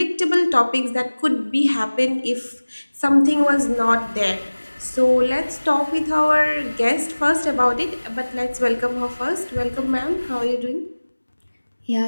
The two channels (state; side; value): inverted; both; correlation -1.00